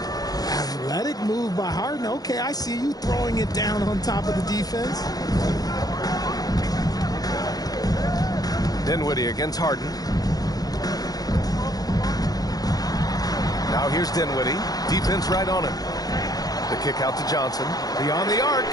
Athletic move by Harden. Okay, I see you throwing it down on top of the defense. Dinwiddie against Harden. Now here's Dinwiddie. Defense right on him. The kick out to Johnson. Beyond the arc.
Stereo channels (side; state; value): right; late; 0.18 ms